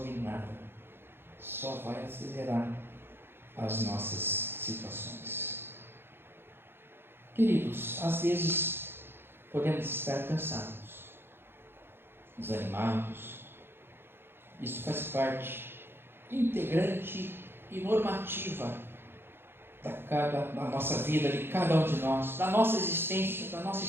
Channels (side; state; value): left; late; 0.11 ms